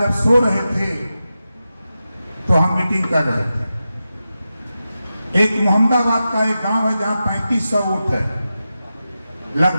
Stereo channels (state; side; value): inverted; both; correlation -0.91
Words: जब सो रहे थे तो हम मीटिंग कर रहे थे। एक मोहम्मदाबाद का एक गांव है जहां 3500 वोट है,